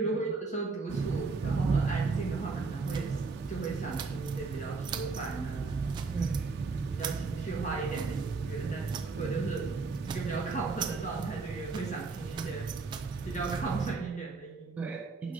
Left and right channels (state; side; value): quieter; left; 4.2 dB